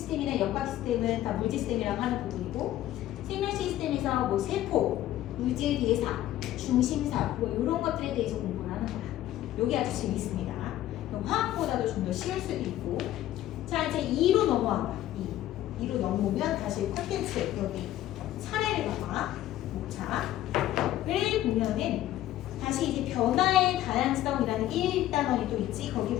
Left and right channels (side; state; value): right; quieter; 13.6 dB